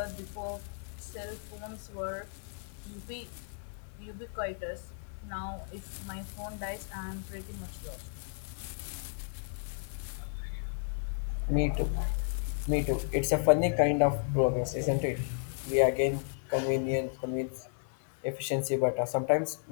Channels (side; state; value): right; silent; digital silence